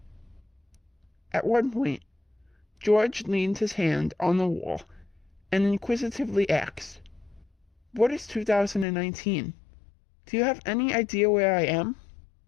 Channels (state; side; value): drops out; right; at 8.8 s